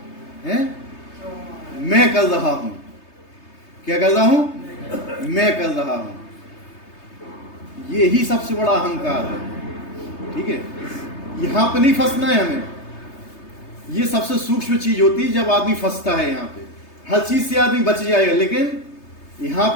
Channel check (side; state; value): right; late; 3.3 ms